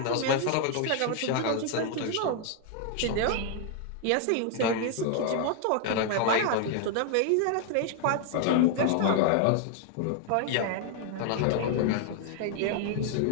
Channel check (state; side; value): different; both; correlation 0.00